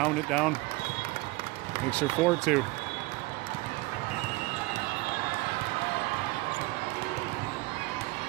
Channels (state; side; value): quieter; left; 22.1 dB